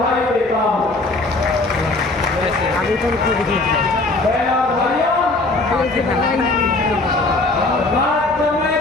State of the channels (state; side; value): quieter; right; 3.1 dB